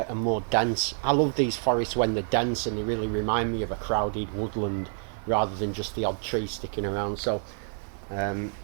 and more dense. I love these forests when they're dense and they really remind me of a crowded woodland rather than just the odd tree sticking around. So I've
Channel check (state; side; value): silent; left; digital silence